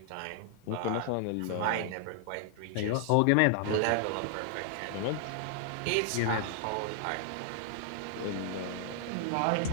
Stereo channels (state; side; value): different; both; correlation 0.00